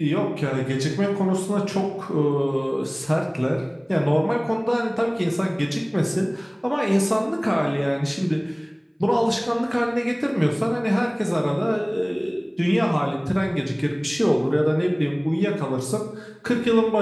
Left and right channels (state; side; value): identical; both; correlation 1.00